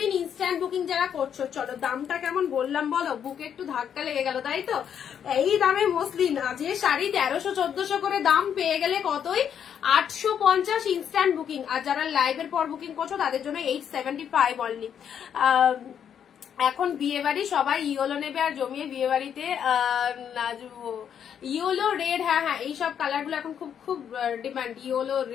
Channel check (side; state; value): right; quieter; 8.5 dB